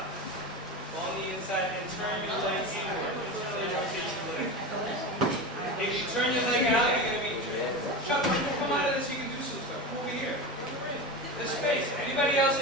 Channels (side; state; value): both; normal; correlation 0.24